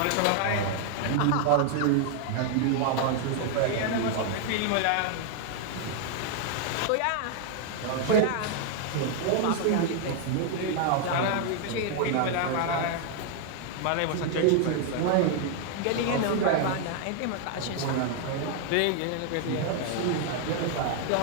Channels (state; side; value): different; both; correlation 0.00